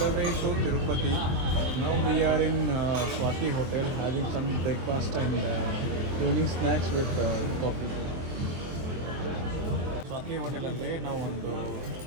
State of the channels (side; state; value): left; late; 23 ms